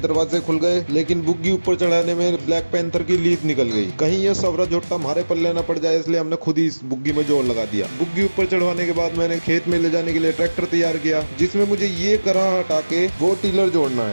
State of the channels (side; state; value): both; inverted; correlation -1.00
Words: खुल गए, लेकिन बुग्गी ऊपर चढ़ाने में ब्लैक पैंथर की लीद निकल गई। कहीं ये सवरा झोटा हमारे पल्ले न पड़ जाए, इसलिए हमने खुद ही इस बुग्गी में जोर लगा दिया। बुग्गी ऊपर चढ़वाने के बाद मैंने खेत में ले जाने के लिए ट्रैक्टर तैयार किया, जिसमें मुझे ये करा हटा के वो टीलर जोड़ना